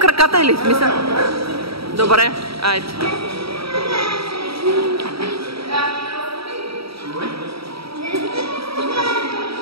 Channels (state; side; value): late; left; 0.76 ms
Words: или смисъл? Добре, айде.